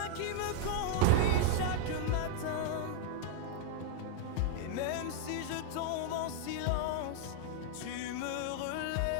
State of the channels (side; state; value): both; different; correlation 0.01